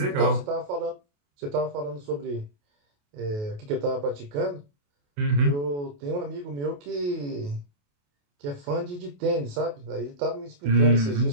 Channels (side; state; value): left; late; 28 ms